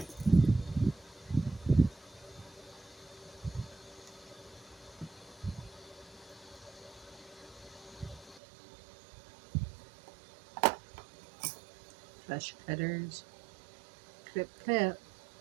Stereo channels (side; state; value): left; drops out; at 8.4 s